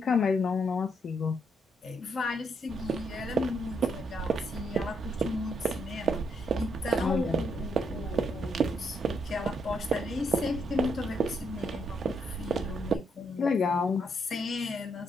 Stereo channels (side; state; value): both; normal; correlation 0.76